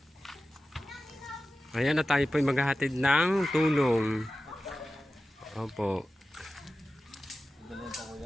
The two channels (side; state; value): both; normal; correlation 0.95